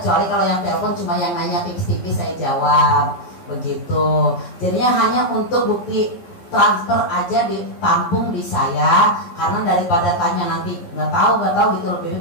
kalau yang telepon cuma yang nanya tipis-tipis saya jawab begitu. Jadinya hanya untuk bukti transfer aja ditampung di saya, karena daripada tanya nanti nggak tahu gitu loh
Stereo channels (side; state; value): right; late; 11 ms